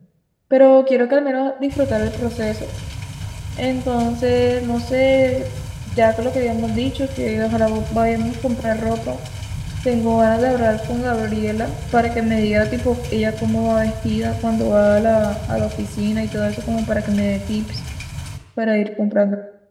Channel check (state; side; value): identical; both; correlation 1.00